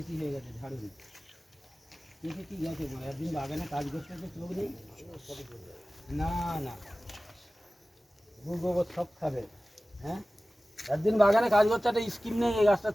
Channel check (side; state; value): both; normal; correlation 0.97